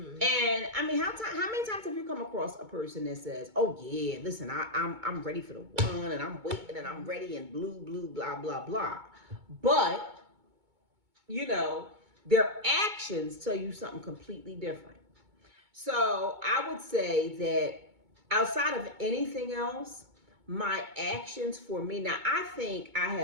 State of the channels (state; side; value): late; left; 2.2 ms